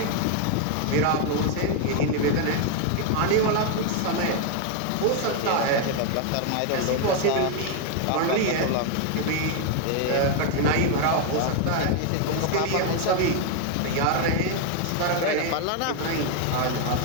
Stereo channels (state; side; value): different; both; correlation 0.01